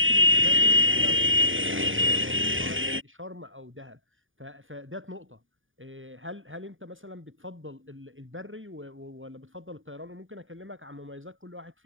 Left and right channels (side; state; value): left; late; 0.58 ms